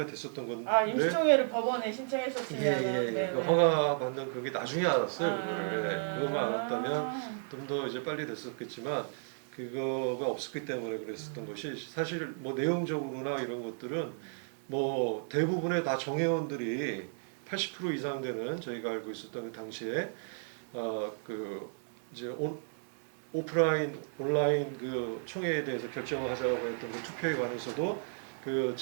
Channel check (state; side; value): silent; left; 55 dB below the other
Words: 됐었던 건데. 임시총회를 법원에 신청했었으면 허가 받는 그게 나중에 알았어요. 그것만 알았다면 좀 더 이제 빨리 됐었겠지만 그거가 없었기 때문에 그랬었던 것이 사실 내용적으로나 이런 것들은 대부분의 다 정회원들이 80% 이상 되는 저희가 알고 있었던 그 당시에 이제 오프라인 온라인 그 총회에 대해서 결정을 하자고 했던 그 투표에 관해서도 그